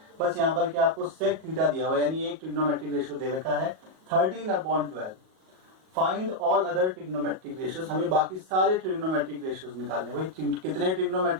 बस यहाँ पर क्या आपको सेक थीटा दिया हुआ है, यानी एक ट्रिग्नोमेट्रिक रेशियो दे रखा है 13/12। Find all other trigonometric ratios, हमें बाकी सारे ट्रिग्नोमेट्रिक रेशियोज निकालने। भाई कितने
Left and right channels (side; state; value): left; late; 38 ms